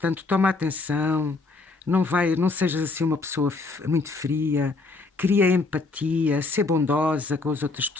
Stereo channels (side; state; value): right; quieter; 3.7 dB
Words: toma atenção, não sejas assim uma pessoa muito fria, cria empatia, ser bondosa com as outras